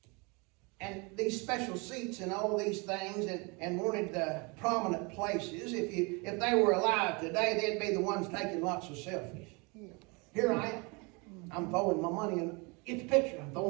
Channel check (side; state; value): left; quieter; 29.4 dB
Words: and these special seats and all these things and wanted the prominent places. If they were alive today, they'd be the ones taking lots of selfies. Here I am. I'm throwing my money in. Get the picture. I'm